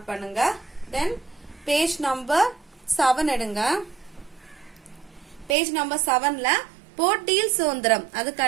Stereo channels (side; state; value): left; drops out; at 5.6 s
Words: பண்ணுங்க. தென் பேஜ் நம்பர் 7 எடுங்க. பேஜ் நம்பர் 7ல போட்டியில் சுதந்திரம் அதுக்கு